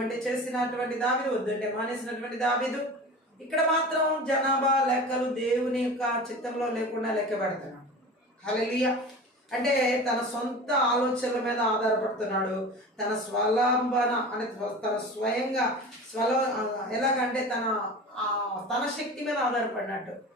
చేసినటువంటి దావీదు, వద్దంటే మానేసినటువంటి దావీదు. ఇక్కడ మాత్రం జనాభా లెక్కలు దేవుని యొక్క చిత్తంలో లేకుండా లెక్క పెడుతున్నాడు. హల్లెలూయా. అంటే తన సొంత ఆలోచనల మీద ఆధారపడుతున్నాడు. తన స్వలంబన అంటే తన స్వయంగా ఎలాగంటే తన శక్తి మీద ఆధారపడినట్టు,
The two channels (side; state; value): both; normal; correlation 0.35